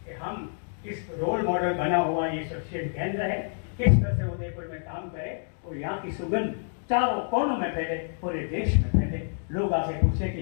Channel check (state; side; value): silent; right; digital silence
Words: कि हम इस रोल मॉडल बना हुआ ये शिक्षण केंद्र है, किस तरह से उदयपुर में काम करे और यहाँ की सुगंध चारों कोनों में फैले, पूरे देश में फैले। लोग आके पूछे कि